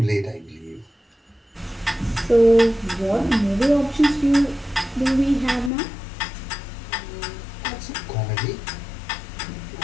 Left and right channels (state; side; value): drops out; right; at 5.7 s